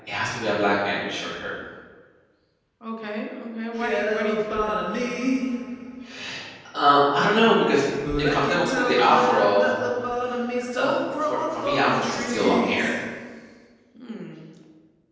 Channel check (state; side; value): identical; both; correlation 1.00